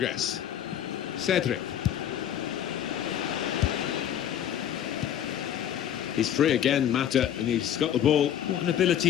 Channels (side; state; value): right; quieter; 10.3 dB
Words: Cedric. He's free again, Mata, and he's got the ball. What an ability